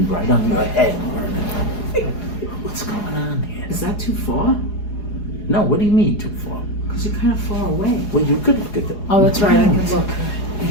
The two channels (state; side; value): late; right; 4.8 ms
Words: right on your head. What's going on here? Is that too far? No, what do you mean too far? Because you're kind of far away. Well, you could look at the. Oh, that's right. I can look.